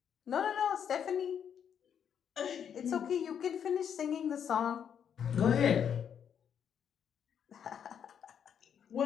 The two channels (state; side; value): quieter; right; 8.2 dB